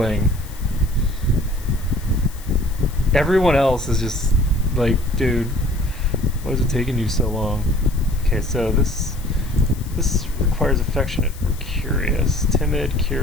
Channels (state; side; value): noise; left; hiss, 20 dB below the sound